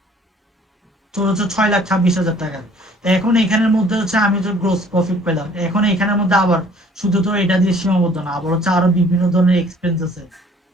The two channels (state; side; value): normal; both; correlation 0.56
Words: তোর হচ্ছে 6,26,000 টাকা। তো এখন এখানের মধ্যে হচ্ছে আমি তো গ্রোস প্রফিট পেলাম, এখন এখানের মধ্যে আবার শুধু তো এটা দিয়ে সীমাবদ্ধ না, আবার হচ্ছে আরো বিভিন্ন ধরনের এক্সপেন্স আছে,